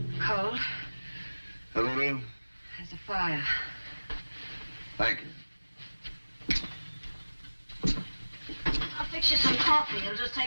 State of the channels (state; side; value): inverted; both; correlation -1.00